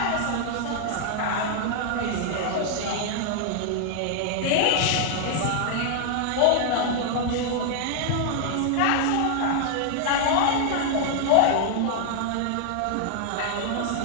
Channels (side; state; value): both; different; correlation 0.00